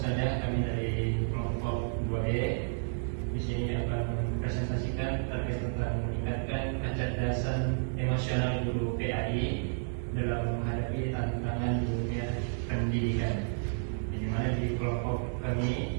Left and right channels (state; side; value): silent; left; digital silence